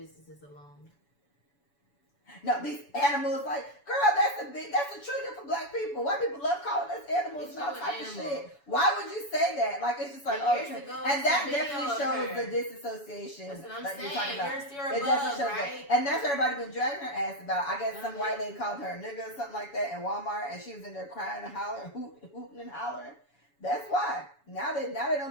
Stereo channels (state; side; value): late; right; 7.1 ms